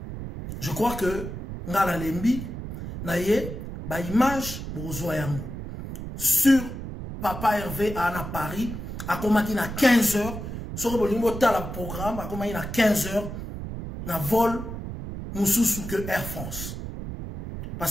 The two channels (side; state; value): right; noise; rumble, 8 dB below the sound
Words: Je crois que ngala lembi na ye ba image bozwa yango sur Papa Hervé à Paris a commencé à 15 heures sur le programme a commencé à 15 heures na vol mususu que Air France.